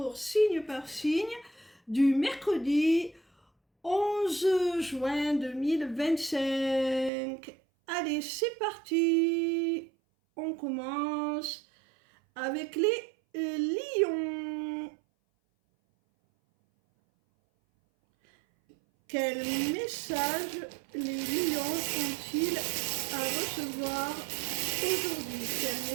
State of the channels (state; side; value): drops out; left; at 7.1 s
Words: signe par signe du mercredi 11 juin 2025. Allez, c'est parti. On commence avec les lions. Quel message les lions ont-ils à recevoir aujourd'hui? Quel